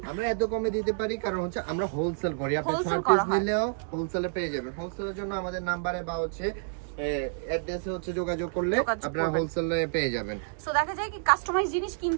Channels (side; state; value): left; silent; digital silence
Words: আমরা এত কমে দিতে পারি কারণ হচ্ছে আমরা হোলসেল করি। আপনি 6 পিস নিলেও হোলসেলে পেয়ে যাবেন। হোলসেলের জন্য আমাদের নাম্বারে বা হচ্ছে অ্যাড্রেসে হচ্ছে যোগাযোগ করলে আপনারা হোলসেলে পেয়ে যাবেন। সো দেখা যায় কি কাস্টমাইজ জিনিস